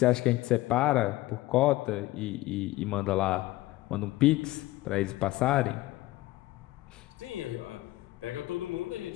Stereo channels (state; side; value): quieter; right; 18.2 dB